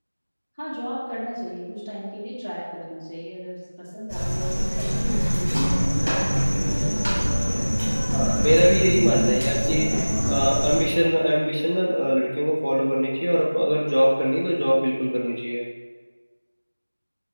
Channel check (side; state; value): both; inverted; correlation -1.00